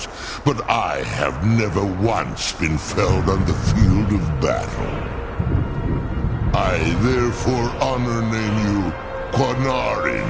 but I have never once been felled on the field of battle. I therefore honor name you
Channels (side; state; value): both; identical; correlation 1.00